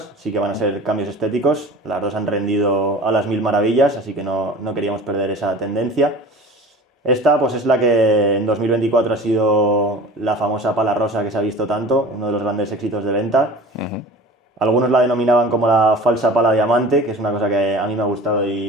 sí que van a ser cambios estéticos. Las dos han rendido a las mil maravillas, así que no queríamos perder esa tendencia. Esta pues es la que en 2024 ha sido la famosa pala rosa que se ha visto tanto, uno de los grandes éxitos de venta. Algunos la denominaban como la falsa pala diamante, que es una cosa que a mí me ha gustado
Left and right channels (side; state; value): both; normal; correlation 0.40